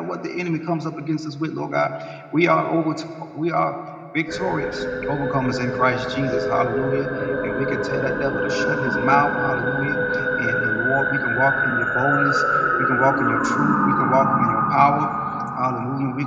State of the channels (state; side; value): identical; both; correlation 1.00